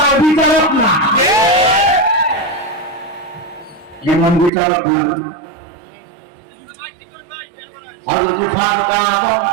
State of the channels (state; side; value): drops out; left; at 4.5 s